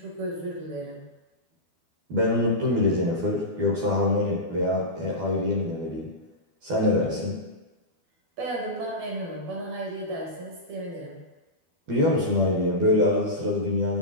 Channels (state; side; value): late; left; 12 ms